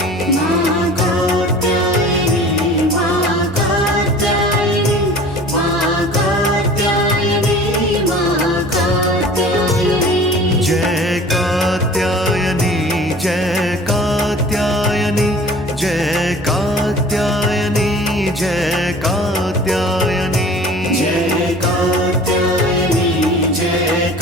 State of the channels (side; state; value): both; normal; correlation 0.44